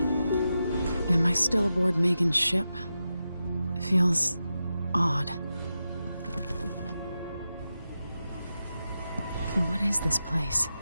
Am I still aboard Megan's ship? Feels odd. What is this place?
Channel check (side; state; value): both; inverted; correlation -0.90